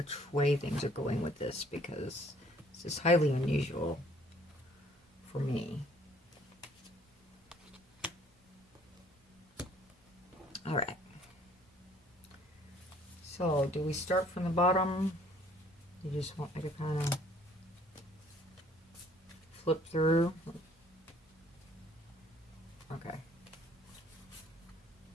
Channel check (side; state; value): both; normal; correlation 0.59